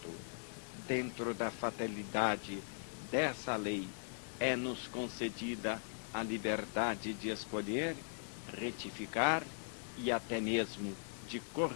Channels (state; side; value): silent; right; 51 dB below the other